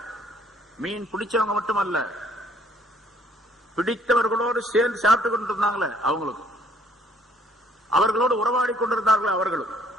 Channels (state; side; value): normal; both; correlation 0.62